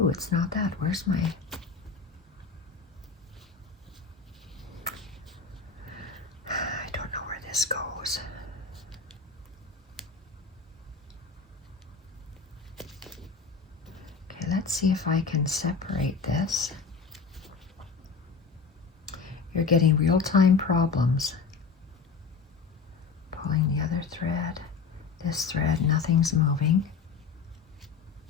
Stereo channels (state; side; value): quieter; right; 5.1 dB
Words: it's not that. Where's my... I don't know where this goes. Okay, let's see if I can separate this. You're getting real-time problems. Pulling the other thread. This thread, nothing's moving.